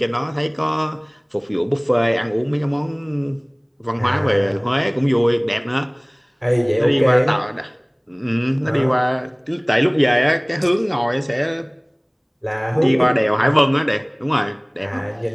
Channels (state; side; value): identical; both; correlation 1.00